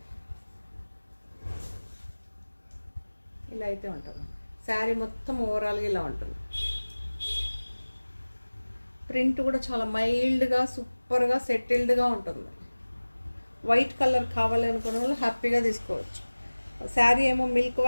శారీ మొత్తం ఓవరాల్గా ఇలా ఉంటుంది. ప్రింట్ కూడా చాలా మైల్డ్గా, సూపర్గా, సెటిల్డ్గా ఉంటుంది. వైట్ కలర్ కావాలి అనుకున్న వాళ్ళు హ్యాపీగా తీసుకోవచ్చు. శారీ ఏమో మిల్క్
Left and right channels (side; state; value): both; inverted; correlation -1.00